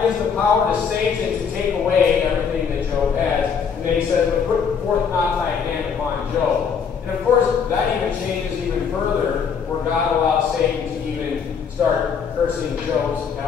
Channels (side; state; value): right; quieter; 6.5 dB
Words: gives the power to Satan to take away everything that Job has. And then he says, But put forth not thy hand upon Job. And of course, that even changes even further, where God allows Satan to even start cursing Job's